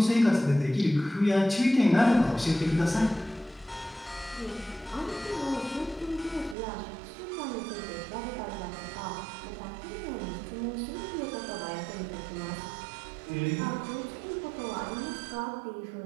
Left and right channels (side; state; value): left; drops out; at 6.6 s